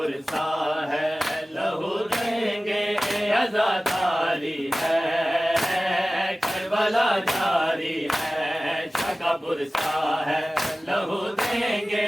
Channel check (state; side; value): normal; both; correlation 0.97